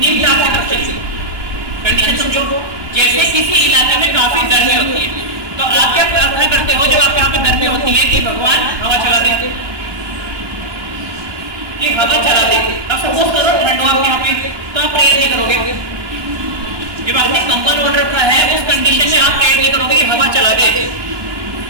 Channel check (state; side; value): late; left; 1.2 ms